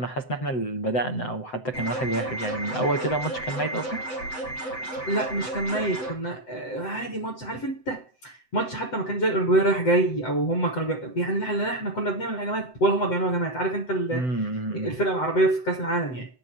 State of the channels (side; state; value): right; late; 7.8 ms